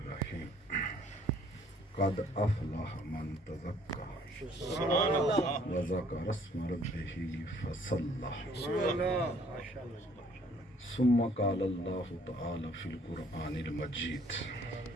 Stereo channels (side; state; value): both; normal; correlation 0.60